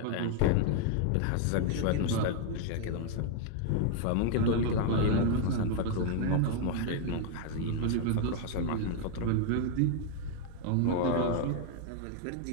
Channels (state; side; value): different; both; correlation 0.00